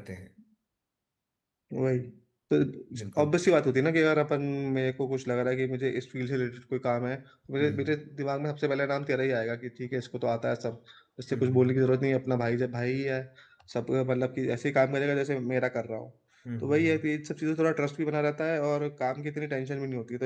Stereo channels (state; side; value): identical; both; correlation 1.00